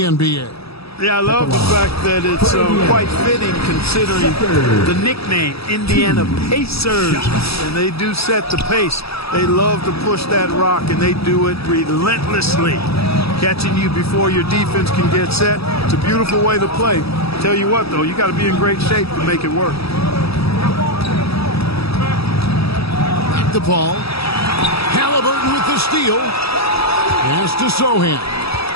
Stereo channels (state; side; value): late; right; 0.77 ms